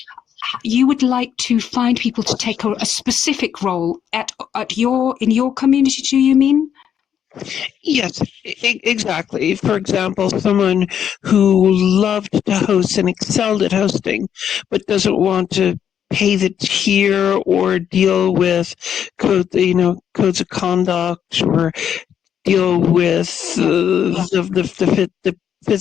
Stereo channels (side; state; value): right; quieter; 8.9 dB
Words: you would like to find people to take a specific role in your community, do you mean? Yes, exactly. For example, someone who loved to host and excelled at hosting, but doesn't want to pay the tier or deal with codes of conduct, or deal with the